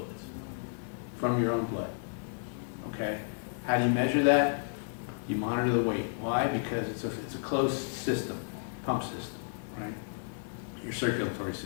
from your own blood. Okay? How do you measure that? You monitor the weight. Why? Because it's a closed system, pump system, right? Your circulatory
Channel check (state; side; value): silent; right; digital silence